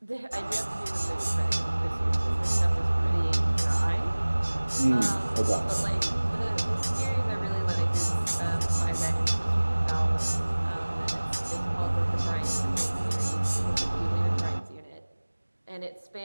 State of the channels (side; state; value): both; inverted; correlation -1.00